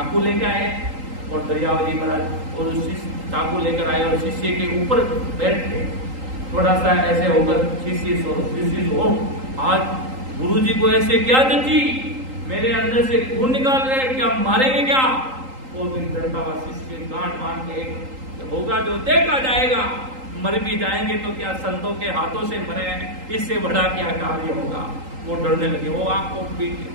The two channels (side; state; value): left; late; 3.8 ms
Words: लेके आए और दरियाव जी महाराज और चाकू लेकर आए और शिष्य के ऊपर बैठ गए। थोड़ा सा ऐसे होकर शिष्य सो आज गुरु जी को ऐसे क्या जची, मेरे अंदर से खून निकाल रहे, क्या मारेंगे क्या? वो भी डरता हुआ शिष्य गांठ बांध के होगा जो देखा जाएगा, मर भी जाएंगे तो क्या संतों के हाथों से मरे, इससे बड़ा क्या कार्य होगा। वो डरने लगे। वो आंखों